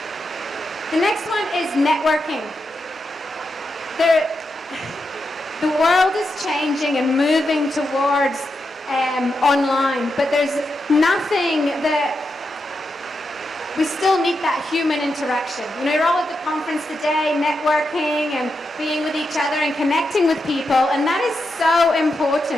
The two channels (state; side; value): normal; both; correlation 0.86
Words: The next one is networking. The world is changing and moving towards online, but there's nothing that we still need that human interaction. You know, you're all at the conference today, networking and being with each other and connecting with people, and that is so